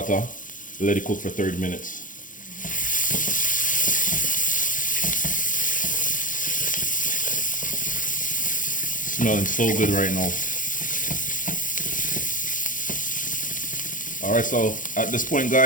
Let it cook for 30 minutes. Smelling so good right now. All right, so at this point,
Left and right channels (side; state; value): right; late; 0.38 ms